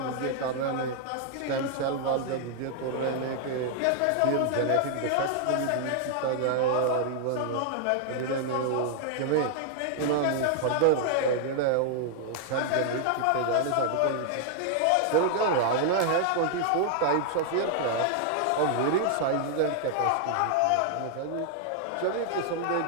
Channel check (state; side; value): different; both; correlation 0.00